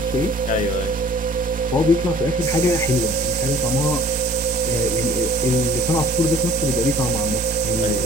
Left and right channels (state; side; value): normal; both; correlation 0.51